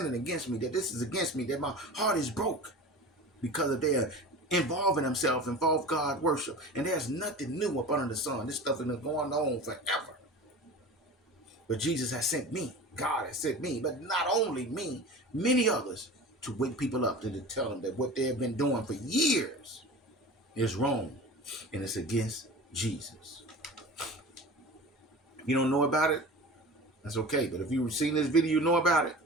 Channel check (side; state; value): both; normal; correlation 0.35